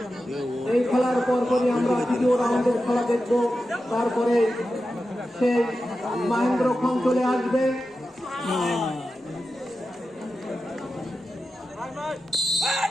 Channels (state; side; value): normal; both; correlation 0.91